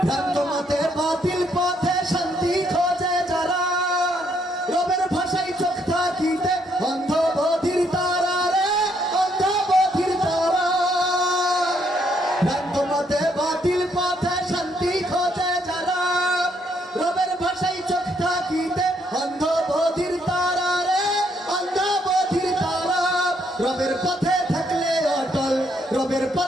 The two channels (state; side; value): normal; both; correlation 0.72